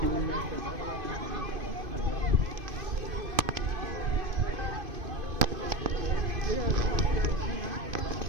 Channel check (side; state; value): left; late; 2.5 ms